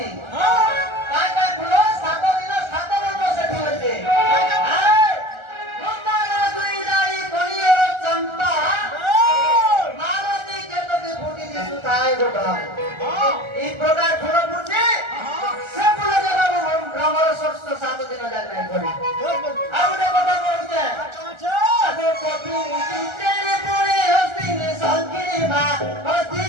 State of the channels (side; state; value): left; late; 1.3 ms